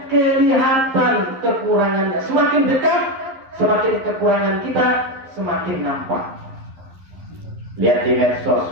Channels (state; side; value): late; left; 11 ms